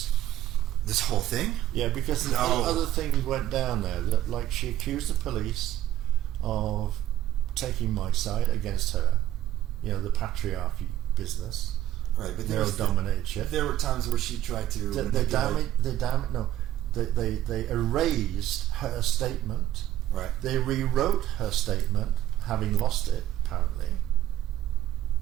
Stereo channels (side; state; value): left; quieter; 12.8 dB